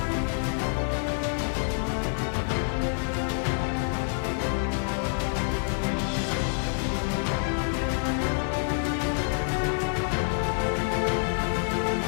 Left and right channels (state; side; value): silent; right; 60 dB below the other